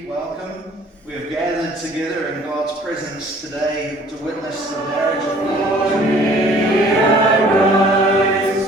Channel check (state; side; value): normal; both; correlation 0.54